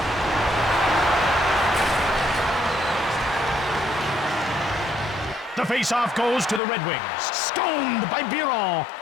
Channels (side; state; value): right; drops out; at 6.6 s